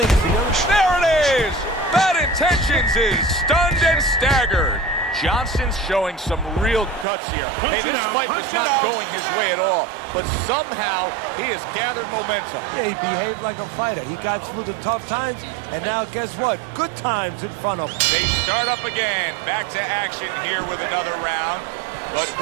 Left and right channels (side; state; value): left; drops out; at 7.1 s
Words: There it is! Bad Intentions is stunned and staggered. Johnson's showing some real guts here. Hey, this fight was not going his way at all, but somehow he has gathered momentum. Yeah, he behaved like a fighter. He got through the tough times, and now guess what? Good times in front of him. They start up again. Back to action here with another round. but